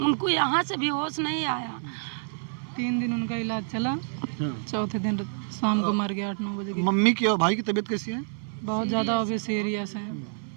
उनको यहाँ से भी होश नहीं आया। 3 दिन उनका इलाज चला, चौथे दिन शाम को मर गया 8-9 बजे। मम्मी की और भाई की तबीयत कैसी है? बहुत ज़्यादा अभी सीरियस है।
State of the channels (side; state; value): left; silent; 59 dB below the other